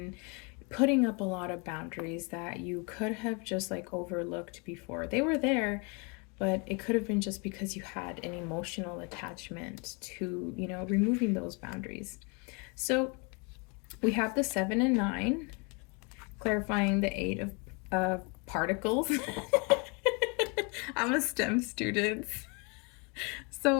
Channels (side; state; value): right; quieter; 32.6 dB